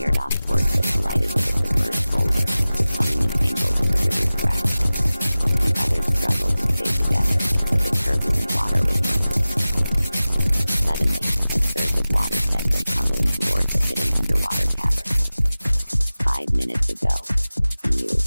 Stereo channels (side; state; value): both; inverted; correlation -0.97